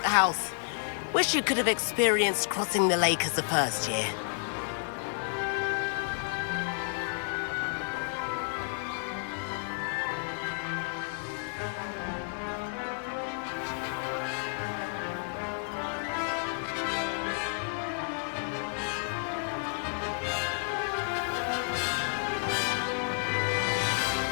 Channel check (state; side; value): silent; right; 57 dB below the other